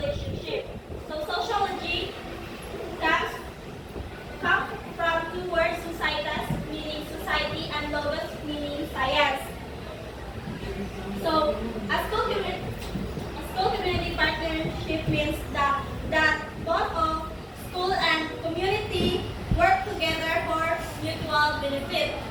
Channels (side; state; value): both; identical; correlation 1.00